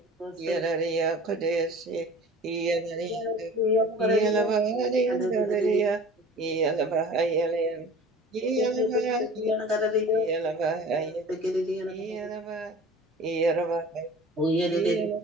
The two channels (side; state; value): both; normal; correlation 0.42